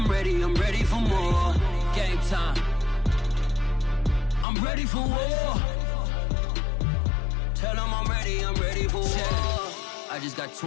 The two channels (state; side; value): drops out; right; at 4.5 s